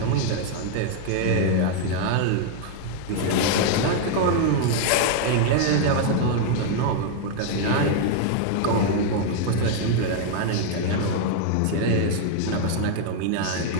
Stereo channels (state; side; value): different; both; correlation 0.00